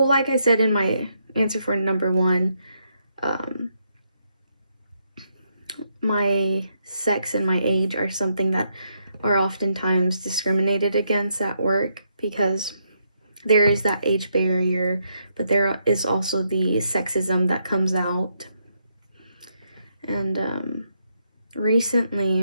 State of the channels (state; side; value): inverted; both; correlation -0.78